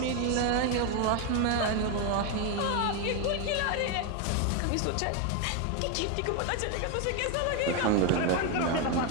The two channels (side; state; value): both; different; correlation 0.01